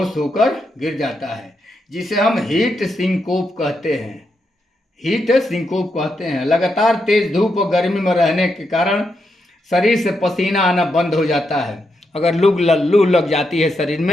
होकर गिर जाता है, जिसे हम हीट सिंकोप कहते हैं। हीट सिंकोप कहते हैं। लगातार तेज धूप और गर्मी में रहने के कारण शरीर से पसीना आना बंद हो जाता है। अगर लू लग जाती है शरीर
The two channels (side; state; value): both; normal; correlation 0.82